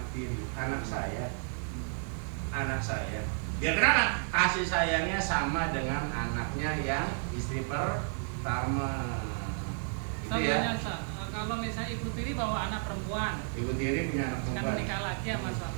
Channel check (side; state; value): left; silent; 56 dB below the other